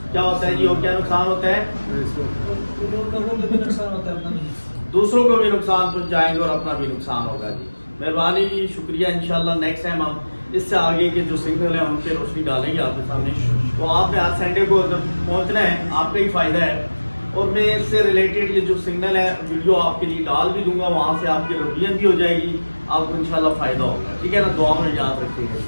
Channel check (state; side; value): inverted; both; correlation -1.00